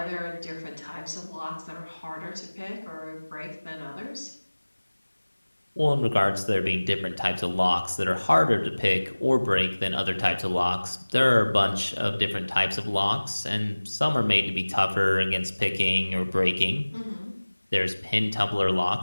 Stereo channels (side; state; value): both; inverted; correlation -1.00